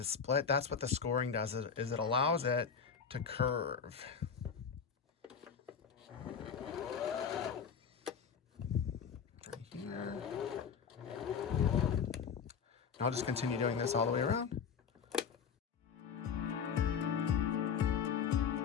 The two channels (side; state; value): right; quieter; 6.7 dB